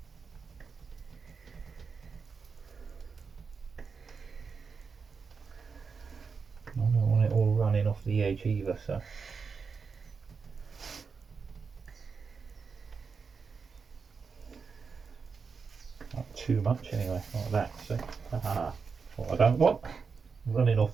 I don't want it all running off the edge either, so not too much anyway, like that. So what I don't want, running off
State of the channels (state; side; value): quieter; left; 5.3 dB